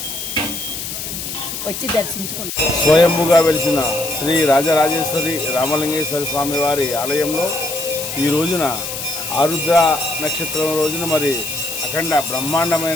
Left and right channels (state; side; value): noise; left; hiss, 6 dB below the sound